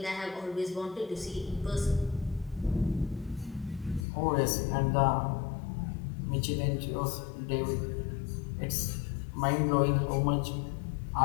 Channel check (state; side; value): drops out; right; at 4.0 s